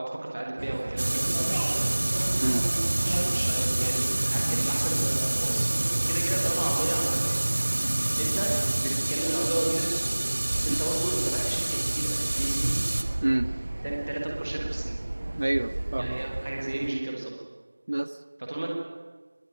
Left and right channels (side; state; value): both; inverted; correlation -1.00